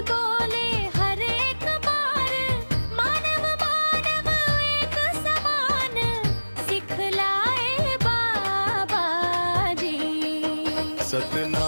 बोले हर एक बार, मानव मानव एक समान, सिखलाए बाबा जी।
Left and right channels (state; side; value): inverted; both; correlation -1.00